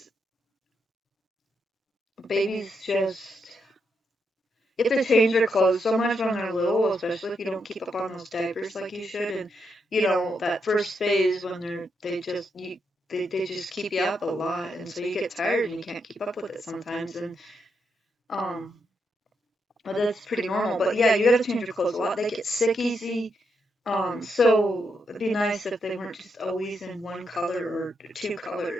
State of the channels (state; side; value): normal; both; correlation 0.81